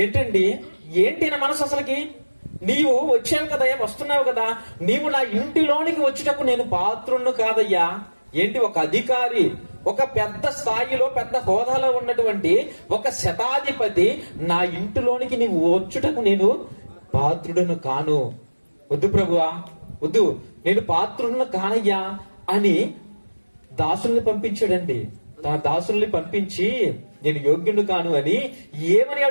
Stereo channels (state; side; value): inverted; both; correlation -1.00